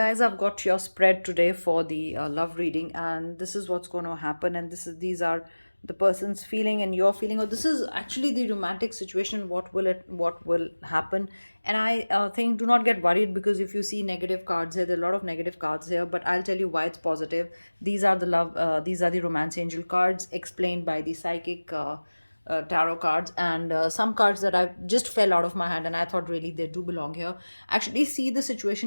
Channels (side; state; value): both; inverted; correlation -1.00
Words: I've got your spread today for the love reading, and this is what's going to happen. And these are the person's feeling and your feeling, or this is actually the romantic situation. What will happen? And I think do not get worried, because if you see negative cards here, there are a lot of negative cards here. But I'll tell you why it's positive. These are the romance angel cards explained by the psychic. Tarot cards, and some cards that I just fell out of my hand and I thought really they do belong here. Actually see the